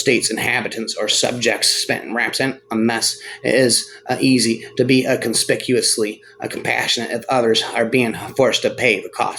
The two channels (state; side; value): identical; both; correlation 1.00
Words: inhabitants or subjects. Spent raps in a mess. It is easy to be conspicuously compassionate if others are being forced to pay the